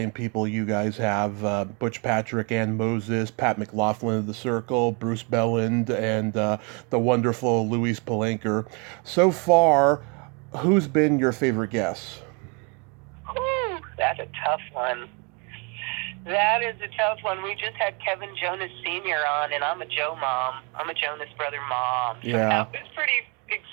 people you guys have: Butch Patrick, Ann Moses, Pat McLaughlin of The Circle, Bruce Belland, and the wonderful Louise Palanker. So far, who's been your favorite guest? Ooh, that's a tough one. That is a tough one. We just had Kevin Jonas Sr. on, and I'm a Joe mom. I'm a Jonas brother mom. So that was pretty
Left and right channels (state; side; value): quieter; left; 33.2 dB